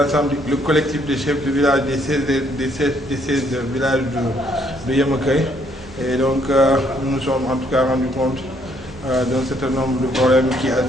le collectif des chefs de village des 16 villages de Yamoké. Et donc nous nous sommes en tout cas rendus compte d'un certain nombre de problèmes qui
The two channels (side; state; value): both; normal; correlation 0.68